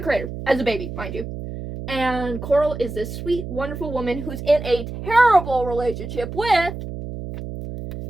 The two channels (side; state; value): right; noise; hum, 8 dB below the sound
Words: creator as a baby, mind you. And Coral is this sweet, wonderful woman who's in a terrible relationship with